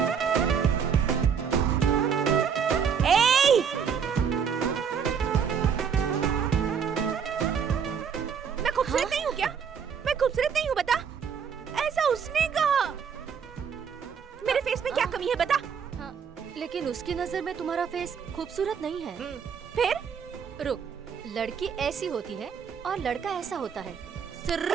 खूबसूरत नहीं हूँ क्या? मैं खूबसूरत नहीं हूँ बता? ऐसा उसने कहा। मेरे फेस में क्या कमी है बता? लेकिन उसकी नजर में तुम्हारा फेस खूबसूरत नहीं है। फिर? रुक, लड़की ऐसी होती है और लड़का ऐसा होता है।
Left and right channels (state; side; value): quieter; left; 7.0 dB